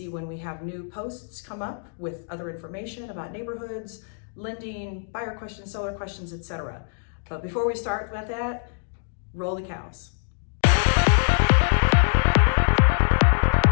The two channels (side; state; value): right; silent; digital silence